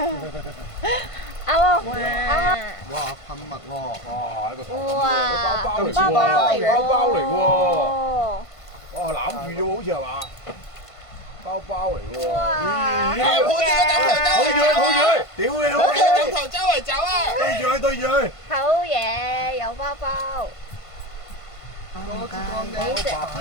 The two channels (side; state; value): right; late; 1.5 ms